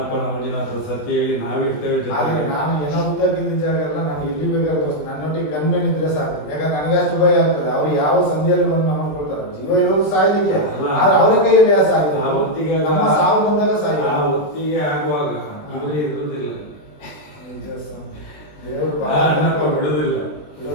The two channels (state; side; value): late; right; 20 ms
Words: ಮಂಜುನಾಥ ಸತ್ಯ ಹೇಳಿ ನಾವಿರ್ತೇವೆ ಆದ್ರೆ ಜೊತೆಗೆ. ನಾನು ಏನೋ ಉದ್ದಾಗಿದ್ದ ಜಾಗ ಎಲ್ಲ ನಾನು ಎಲ್ಲಿ ಬೇಕಾದ್ರೂ ನನ್ನೊಟ್ಟಿಗೆ ಗನ್ಮೇನ್ ಇದ್ರೆ ಸಾಕು. ಯಾಕಂದ್ರೆ ನನಗೆ ಅಷ್ಟು ಭಯ ಆಗ್ತದೆ. ಅವ್ರು ಯಾವ ಸಂಧಿಯಲ್ಲಿ ಬಂದು ನಮ್ಮ ಕೊಡ್ತಾರೆ. ಜೀವ ಇರೋದು ಸಾಯ್ಲಿಕ್ಕೆ, ಆದ್ರೆ ಅವರ ಕೈಯಲ್ಲಿ ಆ ಸಾಯ್ಲಿಕ್ಕೆ. ಆ ಹೊತ್ತಿಗೆ ನಮ್ಮ ಸಾವು ಬಂದಾಗ ಸಾಯ್ಲಿ. ಆ ಹೊತ್ತಿಗೆ ಆಗುವಾಗ ಇವರೇ ಇರುವುದಿಲ್ಲ. ದೇವರು ಆ ಅಣ್ಣಪ್ಪ ಬಿಡುದಿಲ್ಲ.